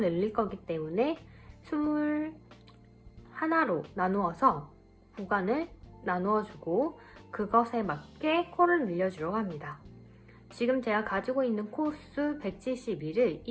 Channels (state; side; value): identical; both; correlation 1.00